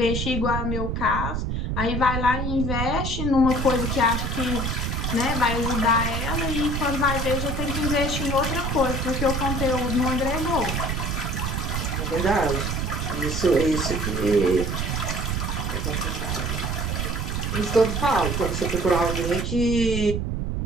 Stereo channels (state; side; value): noise; right; rumble, 1 dB below the sound